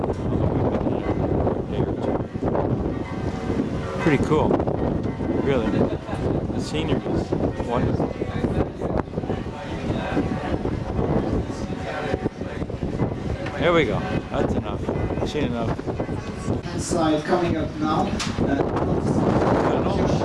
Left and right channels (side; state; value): both; identical; correlation 1.00